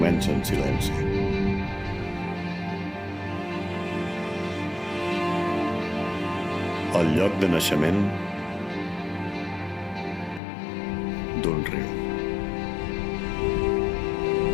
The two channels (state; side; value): drops out; right; at 10.4 s